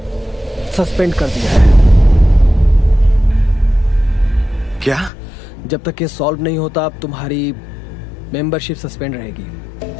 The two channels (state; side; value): drops out; right; at 5.1 s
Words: सस्पेंड कर दिया है। क्या? जब तक ये सॉल्व नहीं होता अब तुम्हारी मेंबरशिप सस्पेंड